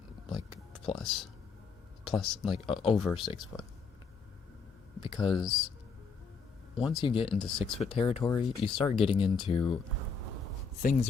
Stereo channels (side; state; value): right; quieter; 5.2 dB